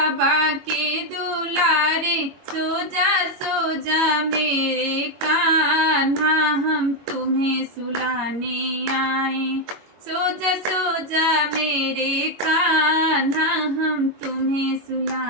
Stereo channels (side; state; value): left; late; 22 ms